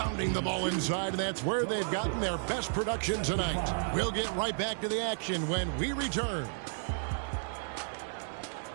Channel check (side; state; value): left; silent; 56 dB below the other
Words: the ball inside, and that's where they've gotten their best production tonight. We'll get right back to the action when we return.